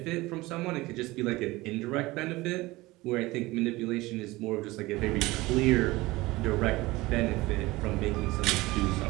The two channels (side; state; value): left; quieter; 20.2 dB